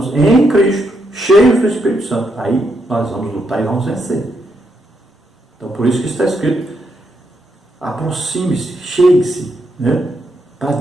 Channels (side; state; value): both; normal; correlation 0.79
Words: em Cristo, cheios do Espírito Santo. Aí nós vamos lutar e vamos vencer. Então por isso que está escrito, aproxime-se, chegue-se, né, para